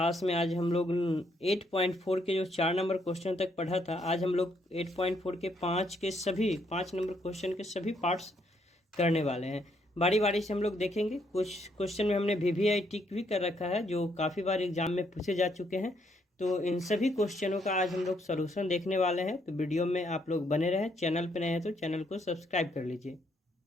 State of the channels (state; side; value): normal; both; correlation 0.72